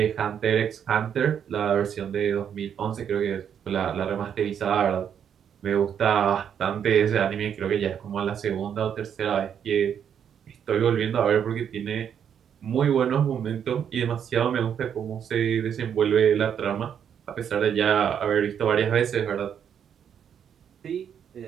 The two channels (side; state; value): left; quieter; 8.4 dB